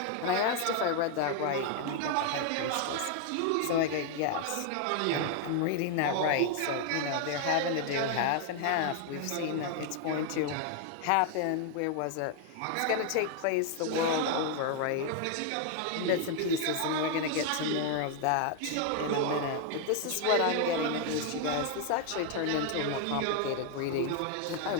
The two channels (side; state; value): both; different; correlation 0.01